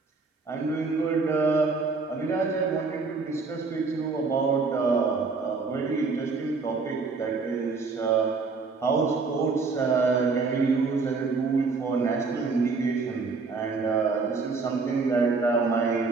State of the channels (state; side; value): quieter; left; 4.4 dB